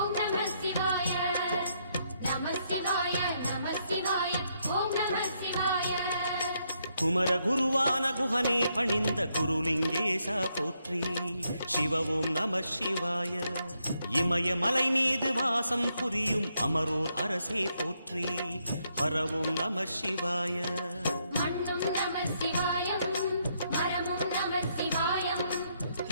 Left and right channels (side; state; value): both; inverted; correlation -0.76